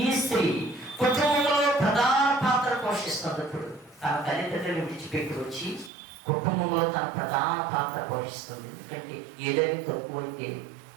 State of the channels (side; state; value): left; drops out; at 5.9 s